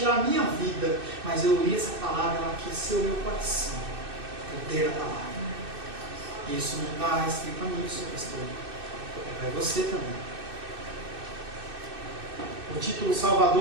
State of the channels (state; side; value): late; left; 2.6 ms